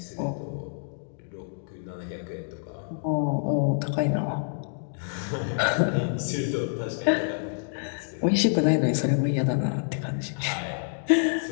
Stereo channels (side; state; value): right; silent; digital silence